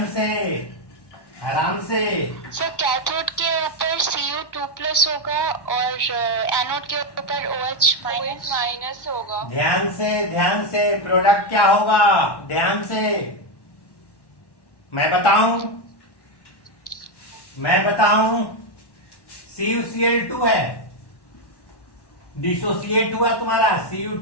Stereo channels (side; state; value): right; late; 1.1 ms